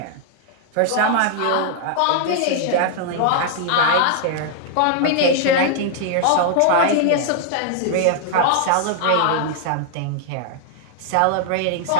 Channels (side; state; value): both; different; correlation -0.01